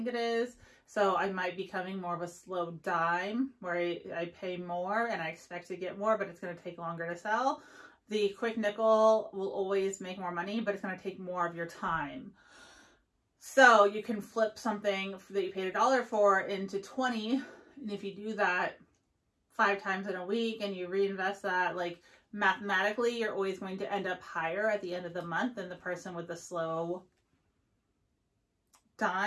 it is. So I might be becoming more of a slow dime where I pay more and I expect to get more, but it's going to take longer to sell. The quick nickel will always make more money, but it's going to take more of your time. So you can flip something that you paid $1 for into 20. And if you do that 5 times in a week and you reinvest that, like mathematically, you're always going to end up higher at the end of the month than the person with the slow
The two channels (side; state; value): both; identical; correlation 1.00